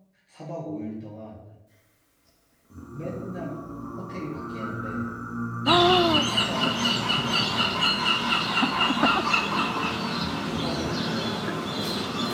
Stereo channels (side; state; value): both; identical; correlation 1.00